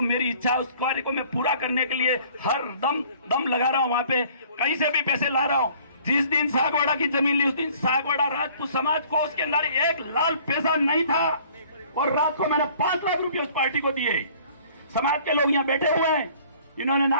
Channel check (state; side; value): inverted; both; correlation -0.54